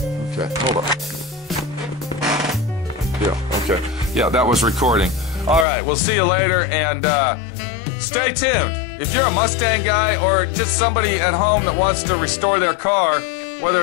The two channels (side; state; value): right; drops out; at 5.7 s